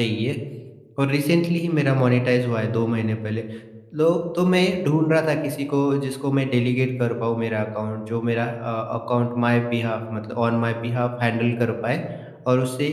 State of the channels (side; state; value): both; identical; correlation 1.00